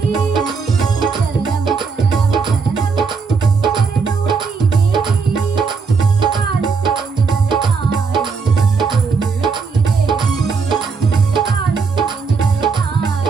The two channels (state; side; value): quieter; left; 5.1 dB